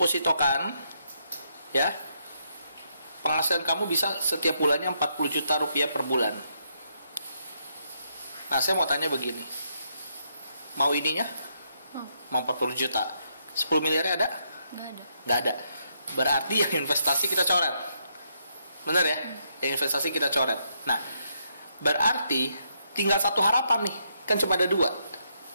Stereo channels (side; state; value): both; inverted; correlation -0.77